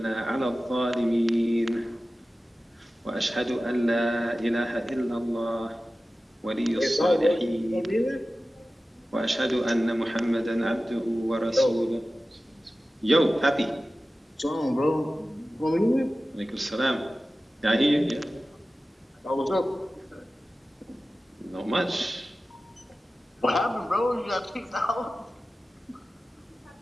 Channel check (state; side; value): normal; both; correlation 0.95